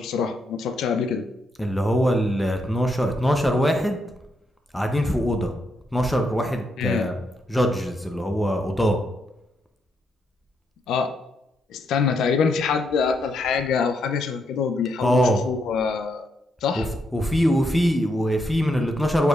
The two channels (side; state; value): both; normal; correlation 0.79